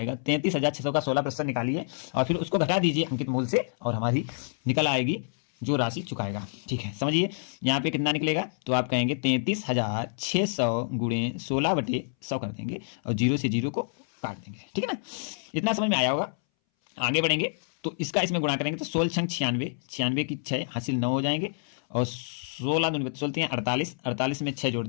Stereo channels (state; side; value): silent; right; 60 dB below the other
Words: 33,600 का 16% निकालिए और फिर उसको घटा दीजिए अंकित मूल्य से, और हमारी निकल आएगी जो राशि चुकाएगा। ठीक है, समझिए यहाँ पे कितना निकलेगा। तो आप कहेंगे 33,600 गुणे 16/100 कर देंगे और 0 से 0 को काट देंगे। ठीक है ना, इतना समझ में आया होगा। आगे बढ़ेंगे तो इसका इसमें गुणा करेंगे तो 16 छंग 96, 96 की 6 हासिल 9 हो जाएंगे, और 16 दूनी 16 48, 48 में 6 जोड़